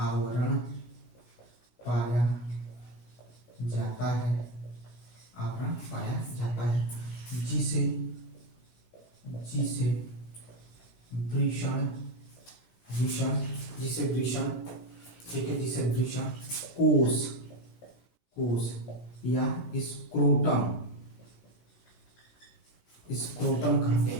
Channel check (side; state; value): right; late; 16 ms